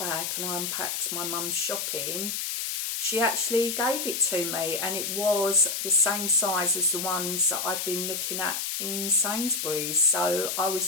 and I unpacked my mum's shopping, she actually gave it to me, and it was the same size as the ones that I've been looking at in Sainsbury's. So I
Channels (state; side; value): noise; left; hiss, 2 dB below the sound